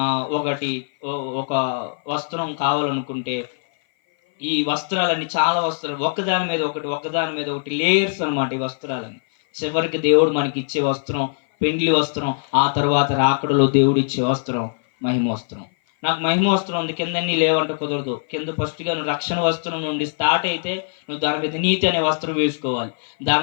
ఒక వస్త్రం కావాలనుకుంటే ఈ వస్త్రాలన్నీ, చాలా వస్త్రాలు ఒకదాని మీద ఒకటి లేయర్స్ అనమాట. ఈ వస్త్రాలన్నీ చివరికి దేవుడు మనకి ఇచ్చే వస్త్రం పెండ్లి వస్త్రం, ఆ తర్వాత రాకడలో దేవుడు ఇచ్చే వస్త్రం మహిమ వస్త్రం. నాకు మహిమ వస్త్రం ఉంది, కింద అన్నీ లేవంటే కుదరదు. కింద ఫస్ట్గా నువ్వు రక్షణ వస్త్రం నుండి స్టార్ట్ అయితే నువ్వు దాని మీద నీతి అనే వస్త్రం వేసుకోవాలి.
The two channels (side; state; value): right; silent; 57 dB below the other